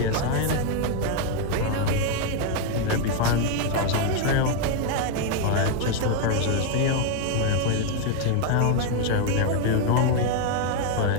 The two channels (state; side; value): different; both; correlation 0.00